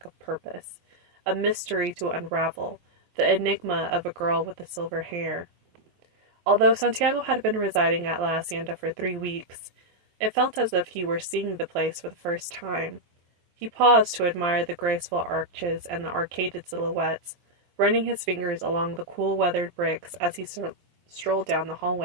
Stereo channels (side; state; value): left; late; 23 ms